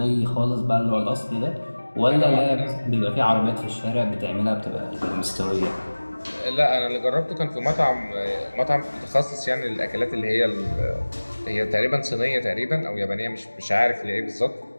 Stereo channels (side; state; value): both; inverted; correlation -1.00